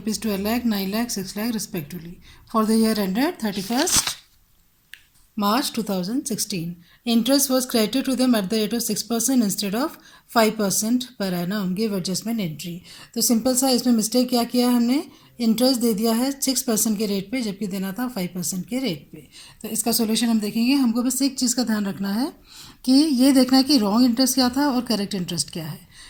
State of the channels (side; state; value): both; identical; correlation 1.00